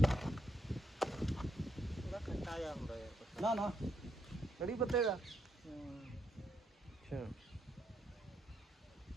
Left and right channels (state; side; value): normal; both; correlation 0.77